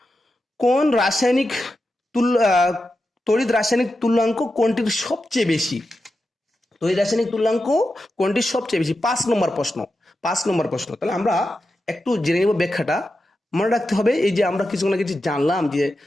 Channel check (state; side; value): normal; both; correlation 0.90